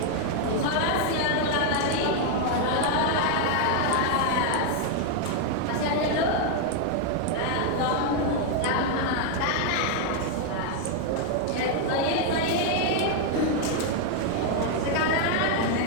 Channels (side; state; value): both; different; correlation 0.00